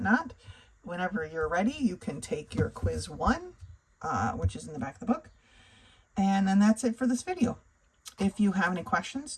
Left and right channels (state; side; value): identical; both; correlation 1.00